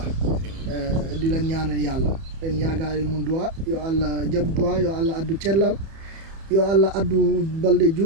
di leen ñaanal yàlla leen yaagaari mu duwa yo allah jaɓ duwa yo allah addu cellal yo allah addu balɗe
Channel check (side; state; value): left; late; 31 ms